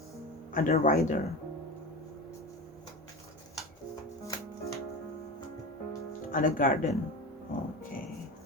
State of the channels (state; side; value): normal; both; correlation 0.26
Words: Ada rider. Ada garden. Oke.